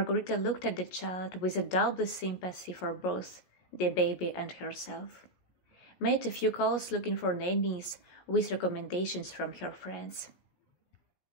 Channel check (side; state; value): right; late; 17 ms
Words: looked at the child with a double sympathy for both the baby and herself, made a few calls looking for nannies with recommendations from her friends.